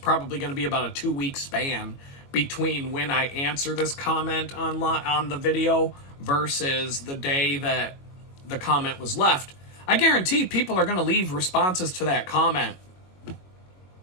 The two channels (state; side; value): late; right; 22 ms